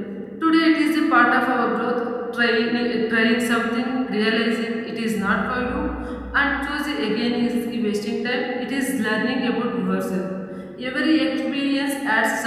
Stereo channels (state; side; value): identical; both; correlation 1.00